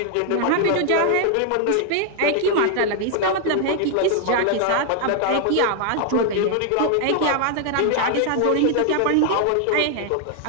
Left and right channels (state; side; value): different; both; correlation 0.00